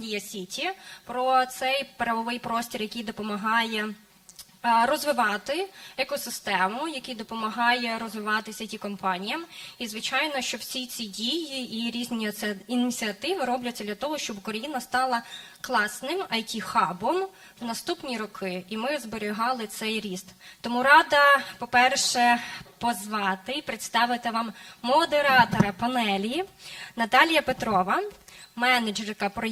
про цей правовий простір, який допомагає розвивати екосистему, який допомагає розвиватися IT-компаніям. І, звичайно, що всі ці дії і різні ініціативи робляться для того, щоб Україна стала класним IT-хабом в наступні роки, і ми зберігали цей ріст. Тому рада, по-перше, позвати і представити вам модератора панелі Наталія Петрова, менеджерка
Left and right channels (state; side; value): identical; both; correlation 1.00